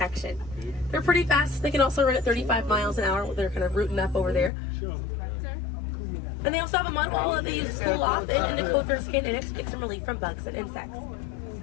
They're pretty fast. They can also run at 35 miles an hour. They're kind of rooting up over there. And they also have a mud hole that they use to cool off and to coat their skin in it to get some relief from bugs and insects.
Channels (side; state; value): right; drops out; at 4.5 s